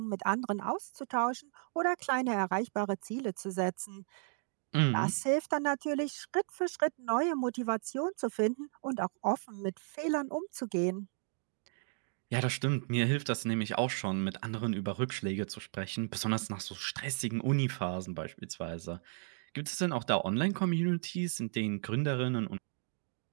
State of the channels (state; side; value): silent; left; 55 dB below the other